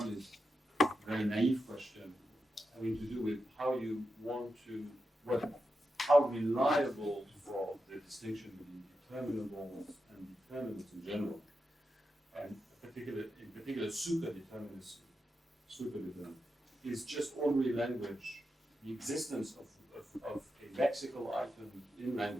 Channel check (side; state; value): both; normal; correlation 0.88